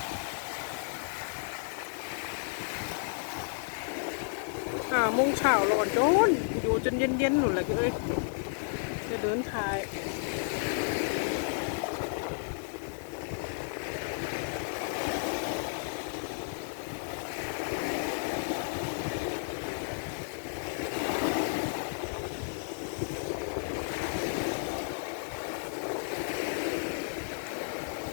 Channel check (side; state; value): right; silent; digital silence